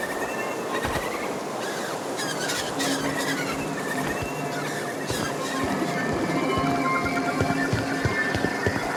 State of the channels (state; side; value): identical; both; correlation 1.00